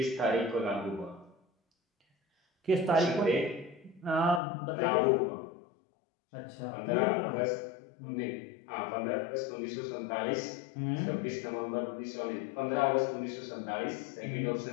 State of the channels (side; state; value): right; drops out; at 4.4 s